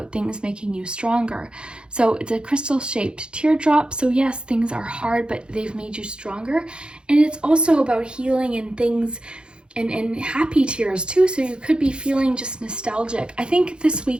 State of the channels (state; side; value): late; left; 0.053 ms